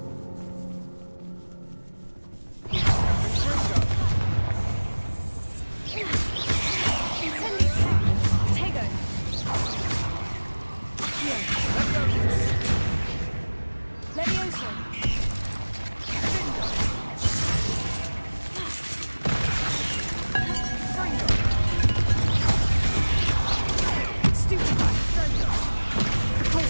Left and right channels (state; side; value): inverted; both; correlation -1.00